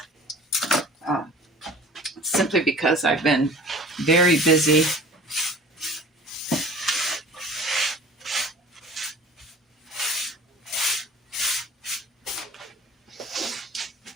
simply because I've been very busy.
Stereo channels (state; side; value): normal; both; correlation 0.44